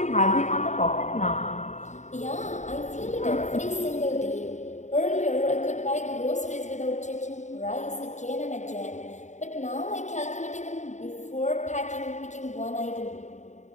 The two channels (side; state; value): right; late; 0.34 ms